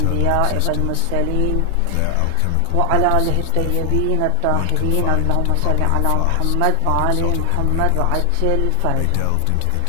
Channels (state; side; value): different; both; correlation 0.00